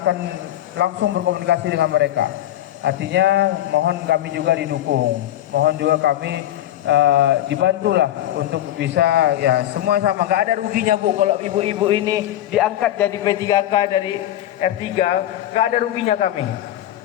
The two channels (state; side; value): quieter; right; 12.9 dB